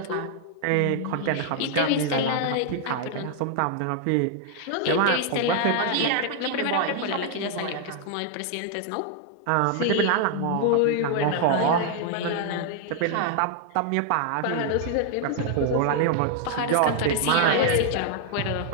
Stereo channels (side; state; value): both; different; correlation 0.00